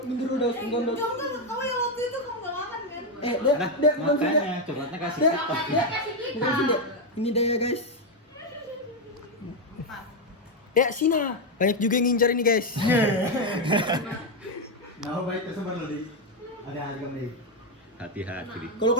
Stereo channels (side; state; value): both; normal; correlation 0.05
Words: mundur dulu dos, mundur dos. Kamu yang waktu itu kamu gak makan kan? Nah, Dia bukan sini. makanya coklatnya kasih Dia, kita. dia, bukan sini. Ini dia guys. Ya, Sina. Banyak juga yang ngincar ini guys. Nah, baik tersebar loh, Dik. Ada harga nih. Hati-hati. Dik. Kalau